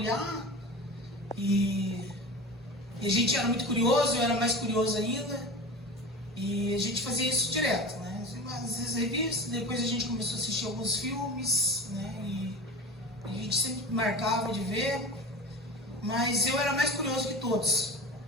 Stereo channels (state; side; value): normal; both; correlation 0.32